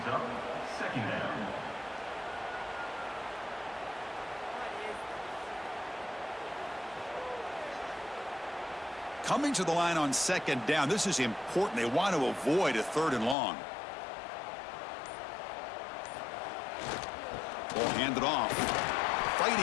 up second down. Coming to the line on second down. This is important. They want to avoid a 3rd and long. Ball handed off. Fighting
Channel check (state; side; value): drops out; right; at 13.4 s